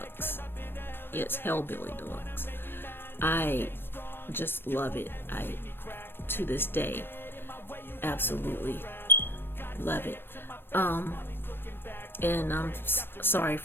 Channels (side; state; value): right; late; 0.10 ms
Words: Yes, Hellbilly Deluxe. I just love it. To this day, absolutely love it. And I'm sorry